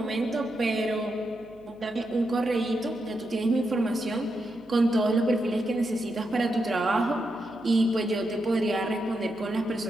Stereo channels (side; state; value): left; noise; hum, 25 dB below the sound